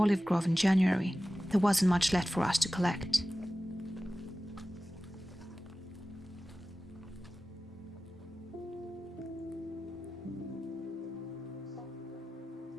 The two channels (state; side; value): normal; both; correlation 0.95